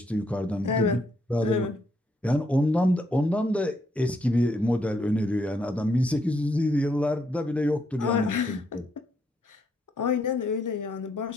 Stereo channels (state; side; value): normal; both; correlation 0.74